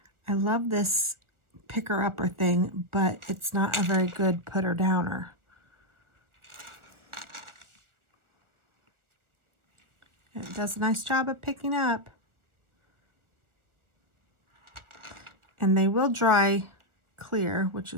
I love this picker upper thing, but it's not a very good putter downer. It does a nice job of picking up. And they will dry clear, which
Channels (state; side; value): late; left; 1.4 ms